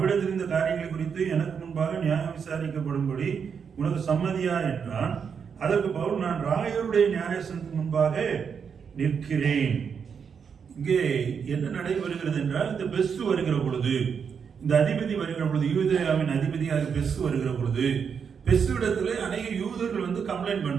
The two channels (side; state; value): left; quieter; 6.7 dB